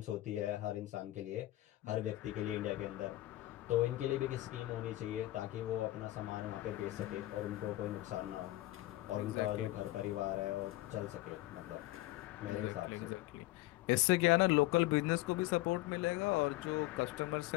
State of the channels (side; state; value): right; quieter; 17.2 dB